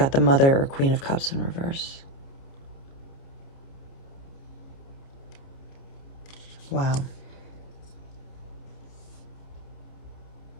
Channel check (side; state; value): right; late; 29 ms